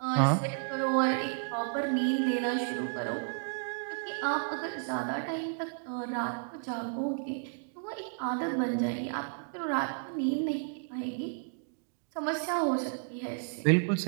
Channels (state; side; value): silent; left; digital silence